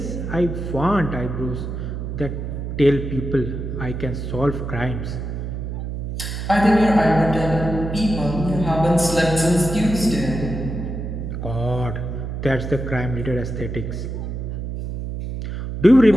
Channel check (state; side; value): noise; right; hum, 5 dB below the sound